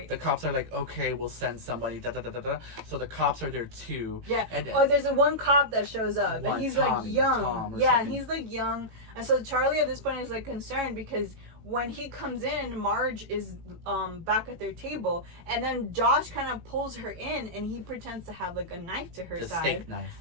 The cops are like, okay, we'll send somebody, da da da da da. So the cops are there too. Yeah. And there's one cop that shows up, and he's like young. And he's like young. And so Charlie at this point is like concerned, because when he comes in, Marge is back at their table, and then Josh kind of pulls her in, and he pretends to have like a knife to her side. Steak knife.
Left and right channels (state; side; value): late; left; 18 ms